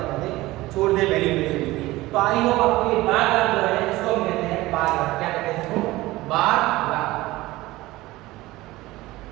करते हैं छोड़ दे वैल्यूएशन की। तो आई होप आपको ये बार ग्राफ जो है इसको हम कहते हैं बार ग्राफ, क्या कहते हैं इसको बार ग्राफ।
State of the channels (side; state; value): left; quieter; 18.7 dB